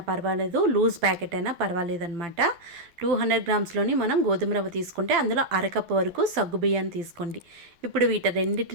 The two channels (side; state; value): left; late; 12 ms